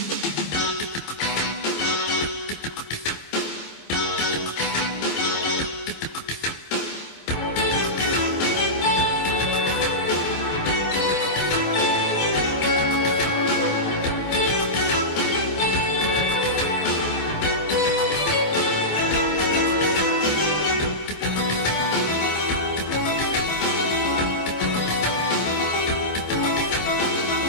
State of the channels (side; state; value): right; late; 12 ms